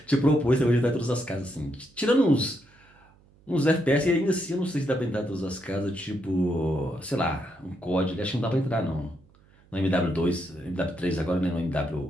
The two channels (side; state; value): right; noise; hum, 29 dB below the sound